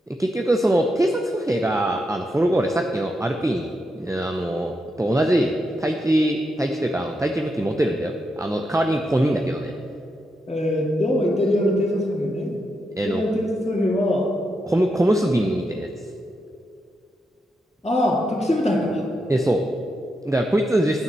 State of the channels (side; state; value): both; normal; correlation 0.84